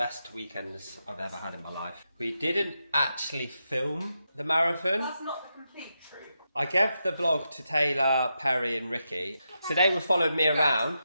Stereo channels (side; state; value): both; inverted; correlation -0.86